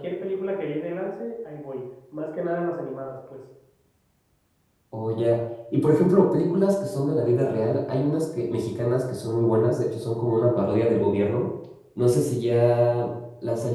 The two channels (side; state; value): both; identical; correlation 1.00